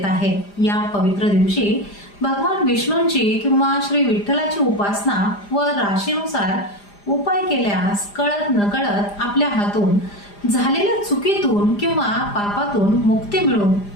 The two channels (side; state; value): right; late; 4.9 ms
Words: आहे. या पवित्र दिवशी भगवान विष्णूंची किंवा श्री विठ्ठलाची उपासना व राशीनुसार उपाय केल्यास कळत नकळत आपल्या हातून झालेल्या चुकीतून किंवा पापातून मुक्ती मिळून